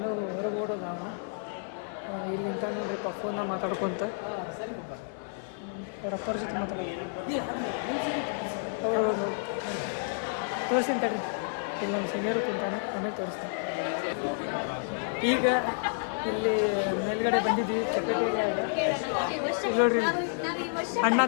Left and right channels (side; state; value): right; silent; 58 dB below the other